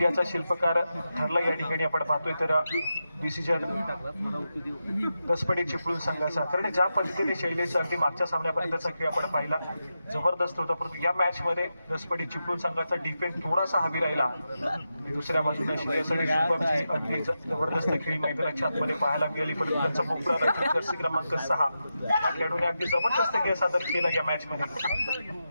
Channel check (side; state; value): both; inverted; correlation -0.89